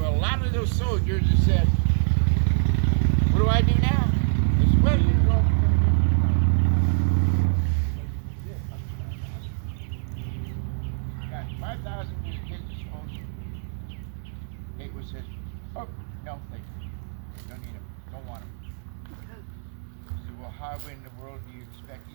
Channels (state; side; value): silent; left; digital silence